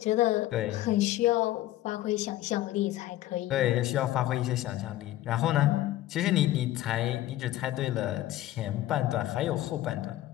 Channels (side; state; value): right; quieter; 14.7 dB